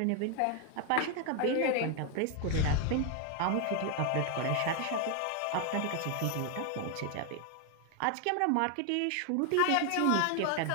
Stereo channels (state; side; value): different; both; correlation 0.00